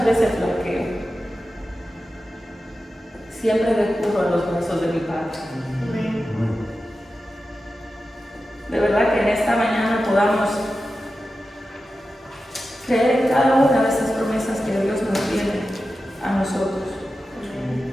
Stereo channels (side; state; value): both; normal; correlation 0.92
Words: veces flaqueo, siempre recurro a los brazos de mi Padre. De verdad que en esta mañana podamos creer en cada una de estas promesas que Dios nos tiene a nosotros.